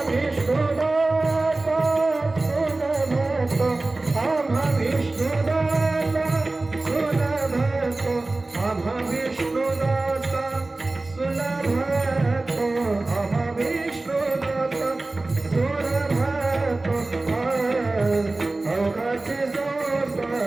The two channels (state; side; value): quieter; left; 3.1 dB